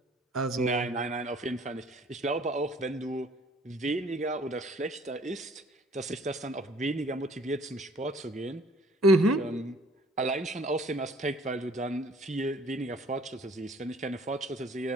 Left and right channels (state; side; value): normal; both; correlation 0.56